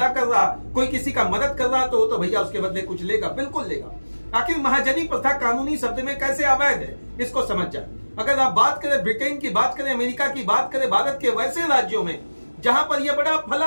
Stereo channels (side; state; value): both; inverted; correlation -1.00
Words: कर रहा, कोई किसी का मदद कर रहा, तो भैया उसके बदले कुछ लेगा, बिल्कुल लेगा। आखिर महाजनी प्रथा कानूनी शब्द में कैसे अवैध है, इसको समझ जाए। अगर आप बात करें ब्रिटेन की, बात करें अमेरिका की, बात करें भारत के वैसे राज्यों में जहां पर यह बड़ा